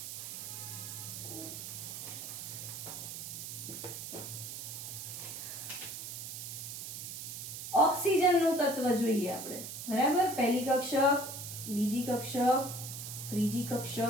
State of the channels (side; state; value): right; noise; hiss, 7 dB below the sound